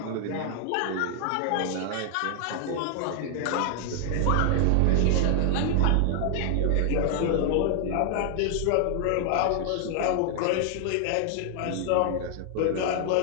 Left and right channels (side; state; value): both; different; correlation 0.00